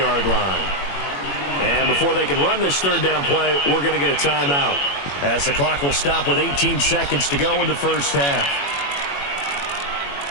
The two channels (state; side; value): late; right; 21 ms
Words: line. And before they can run this third down play, we're going to get a timeout, as the clock will stop with 18 seconds to go in the first half.